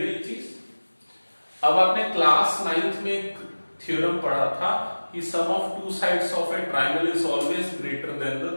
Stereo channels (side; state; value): both; inverted; correlation -1.00